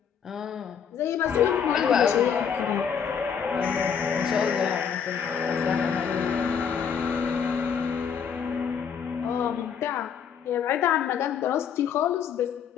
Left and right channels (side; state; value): right; quieter; 7.3 dB